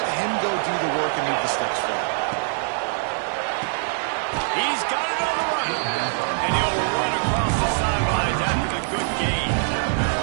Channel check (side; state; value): left; silent; 63 dB below the other